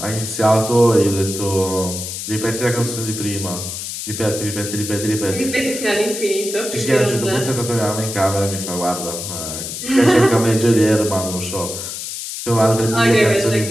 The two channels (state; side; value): noise; left; hiss, 7 dB below the sound